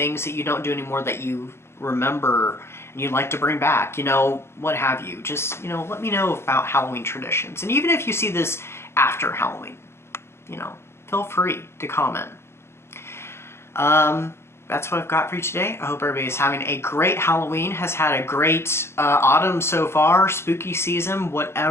that you don't do anymore that you remember and you'd like to bring back, you know, what have you. Just, you know, let me know about Halloween traditions. And even if you see this after Halloween, you know, feel free to comment. That's what I've got for you today. I hope everybody is having a great Halloween, has had a great autumn so far, spooky season,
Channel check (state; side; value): late; right; 0.12 ms